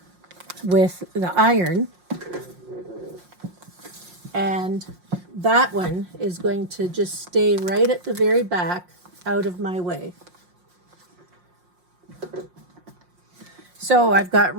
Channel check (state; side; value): late; left; 5.6 ms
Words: with the iron. And that one is going to just stay right at the very back, out of my way. So I've got